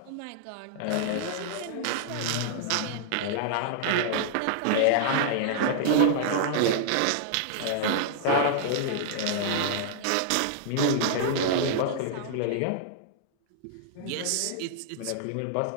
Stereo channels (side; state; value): both; different; correlation -0.01